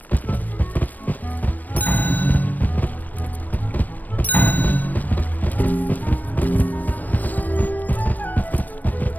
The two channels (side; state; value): right; late; 0.082 ms